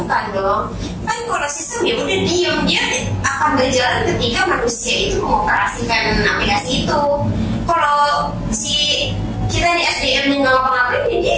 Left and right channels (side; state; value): both; identical; correlation 1.00